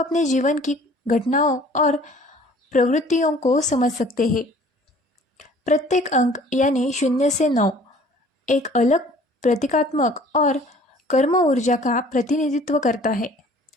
जीवन की घटनाओं और प्रवृत्तियों को समझ सकते हैं। प्रत्येक अंक यानी 0 से 9 एक अलग प्रतीकात्मक और कर्म ऊर्जा का प्रतिनिधित्व करता है।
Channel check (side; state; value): both; normal; correlation 0.52